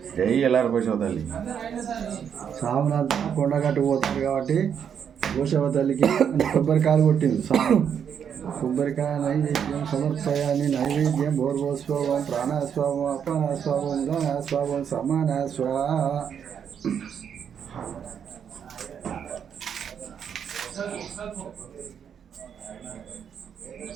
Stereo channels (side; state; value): left; quieter; 7.9 dB